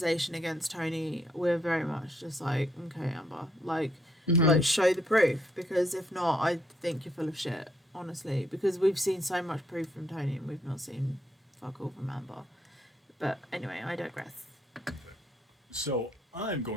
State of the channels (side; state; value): both; normal; correlation 0.73